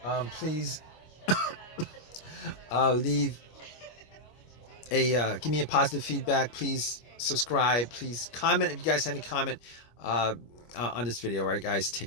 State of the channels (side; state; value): right; late; 25 ms